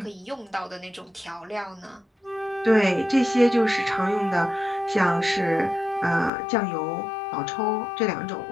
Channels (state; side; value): drops out; right; at 6.3 s